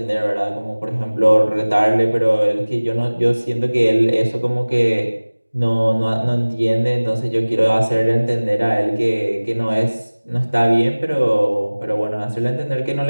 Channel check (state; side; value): inverted; both; correlation -1.00